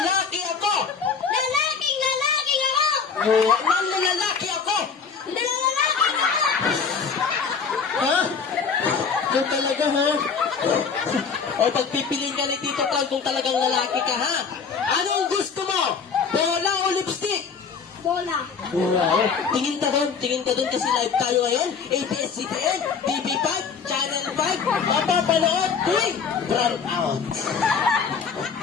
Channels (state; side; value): quieter; right; 5.9 dB